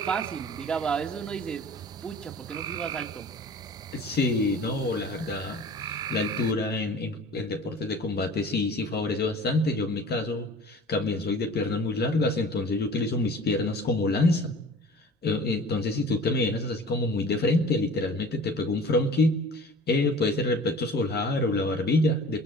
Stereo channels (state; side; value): normal; both; correlation 0.43